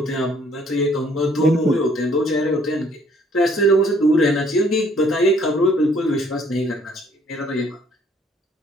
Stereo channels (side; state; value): both; normal; correlation 0.62